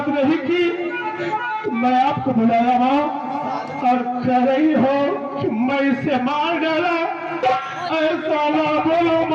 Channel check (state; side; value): identical; both; correlation 1.00